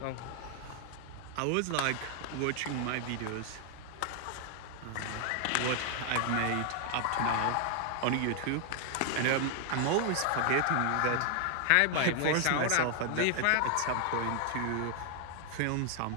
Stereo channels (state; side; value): different; both; correlation 0.00